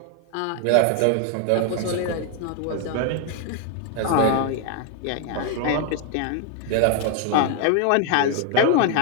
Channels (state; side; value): different; both; correlation 0.00